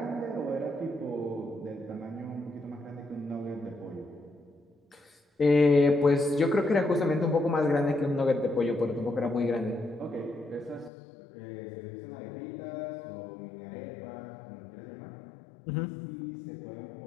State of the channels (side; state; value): right; drops out; at 10.9 s